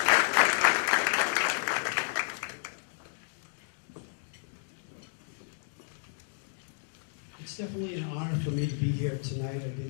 It's definitely an honor for me to be here tonight. I've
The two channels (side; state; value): right; silent; digital silence